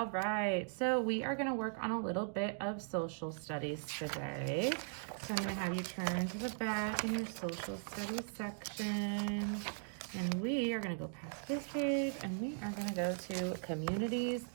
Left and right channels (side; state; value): left; silent; digital silence